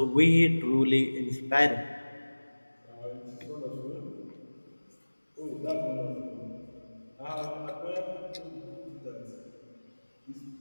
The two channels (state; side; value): inverted; both; correlation -1.00